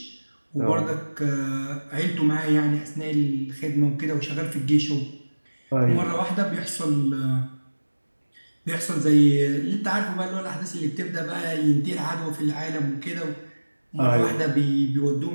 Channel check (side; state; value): both; inverted; correlation -1.00